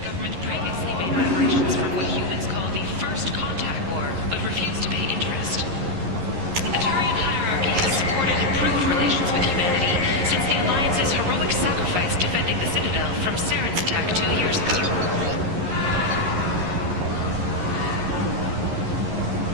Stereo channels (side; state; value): left; late; 11 ms